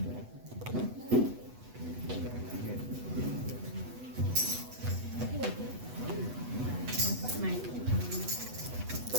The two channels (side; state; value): left; late; 8.1 ms